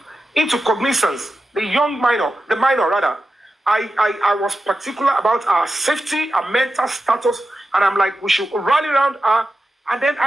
cognizance the minor rather. I was particular about our safety, our mental status, and I'm like, we should rally around her. And then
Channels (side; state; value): both; normal; correlation 0.91